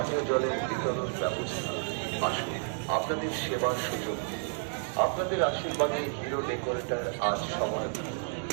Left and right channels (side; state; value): left; silent; 57 dB below the other